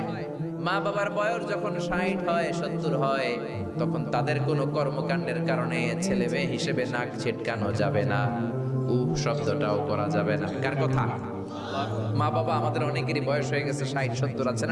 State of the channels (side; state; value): both; identical; correlation 1.00